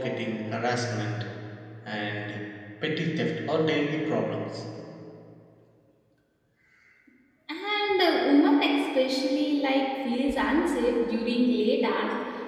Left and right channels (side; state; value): both; identical; correlation 1.00